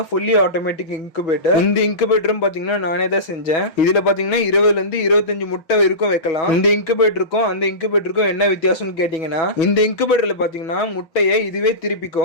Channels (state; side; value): late; right; 6.2 ms